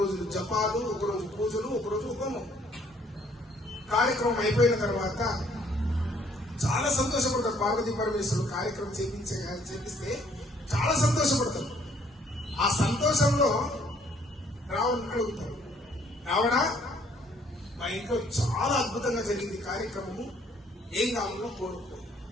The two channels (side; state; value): both; normal; correlation 0.63